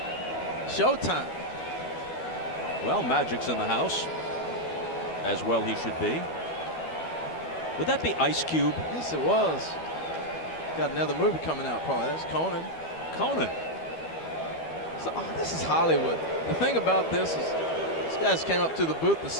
Showtime. Well, Magic's in the house, as well he should be. Would that be Ice Cube? Yes, it was. Got another movie coming out, probably. That's Conan. Conan. So, this is Hollywood. The thing about this is, these guys came up to the booth to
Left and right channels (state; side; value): late; right; 12 ms